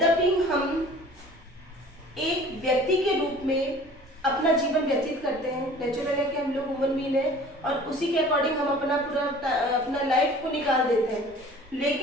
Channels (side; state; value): both; normal; correlation 0.47